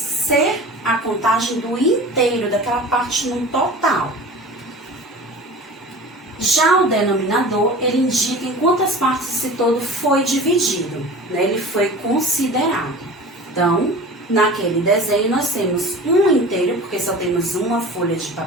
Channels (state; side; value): normal; both; correlation 0.38